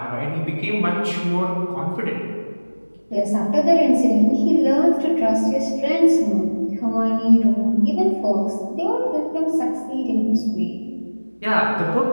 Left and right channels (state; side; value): inverted; both; correlation -1.00